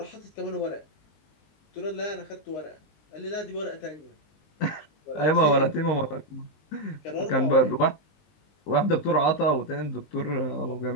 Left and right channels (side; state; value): right; late; 20 ms